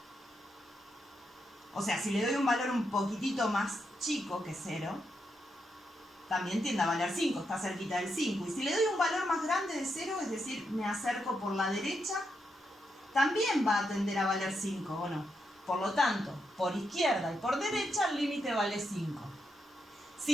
O sea, si le doy un valor un poquitito más chico que 0, también tiende a valer 5, está cerquita del 5. Y si le doy un valor más grande de 0, es decir, me acerco por la derecha, también va a tender a valer 5, ¿o no? Por lo tanto, por izquierda y por derecha el límite vale 5.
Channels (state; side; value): normal; both; correlation 0.82